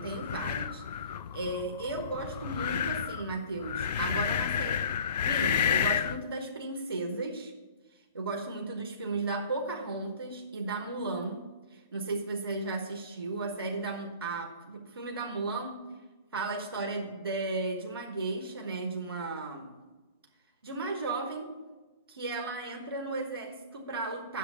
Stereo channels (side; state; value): both; inverted; correlation -0.46